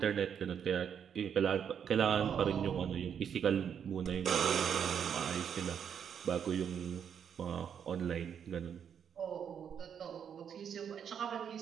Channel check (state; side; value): quieter; left; 8.0 dB